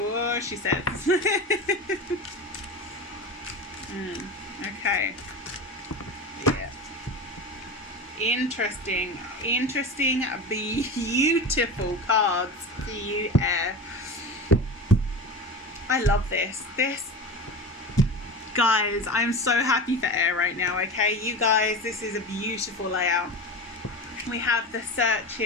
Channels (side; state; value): both; normal; correlation 0.27